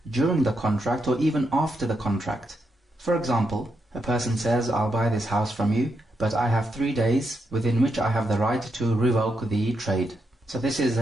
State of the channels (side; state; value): both; normal; correlation 0.82